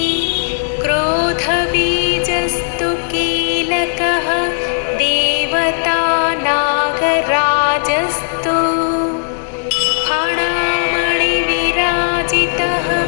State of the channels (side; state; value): right; silent; 69 dB below the other